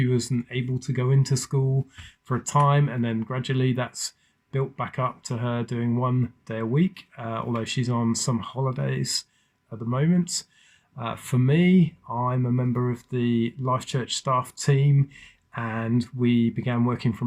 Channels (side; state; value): both; identical; correlation 1.00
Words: wasn't able to go into school for a time, and then gradually that's built back up to her doing 1 day a week, although she's on some holidays at the moment. For me, I'm a member of the Life Church staff team, and we began working